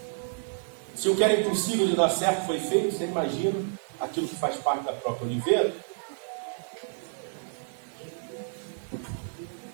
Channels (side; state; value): left; silent; digital silence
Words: Se o que era impossível de dar certo foi feito, você imagina aquilo que faz parte da própria oliveira?